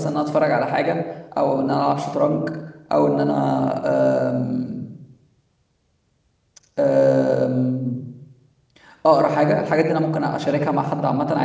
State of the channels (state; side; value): identical; both; correlation 1.00